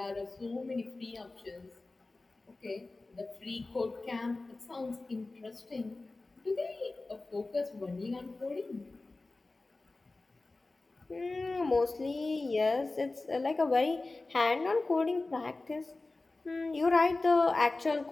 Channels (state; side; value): quieter; right; 3.3 dB